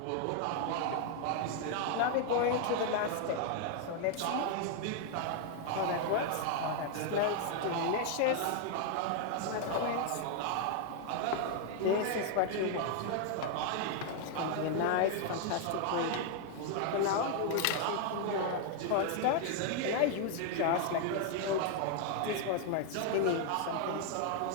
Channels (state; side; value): different; both; correlation 0.00